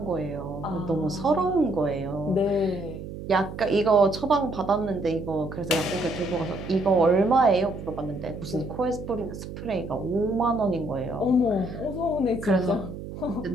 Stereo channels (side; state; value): right; noise; hum, 10 dB below the sound